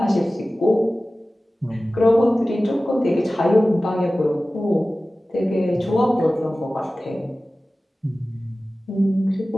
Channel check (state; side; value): normal; both; correlation 0.96